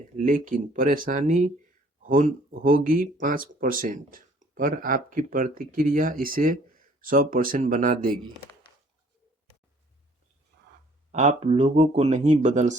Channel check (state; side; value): normal; both; correlation 0.58